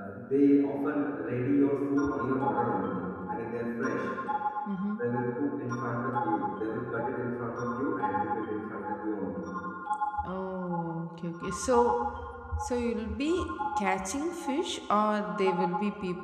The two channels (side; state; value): both; identical; correlation 1.00